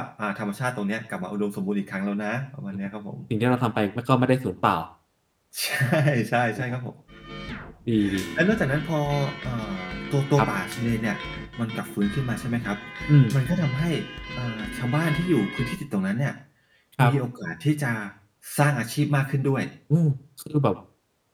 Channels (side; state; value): both; identical; correlation 1.00